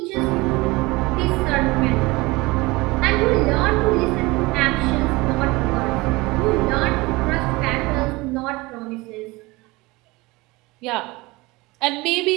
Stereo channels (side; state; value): left; quieter; 22.5 dB